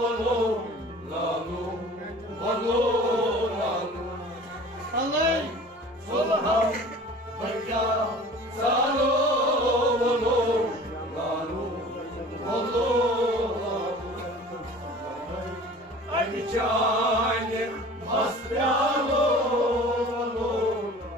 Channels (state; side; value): normal; both; correlation 0.44